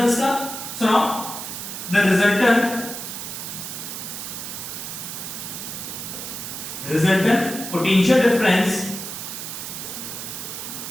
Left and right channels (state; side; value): noise; right; hiss, 7 dB below the sound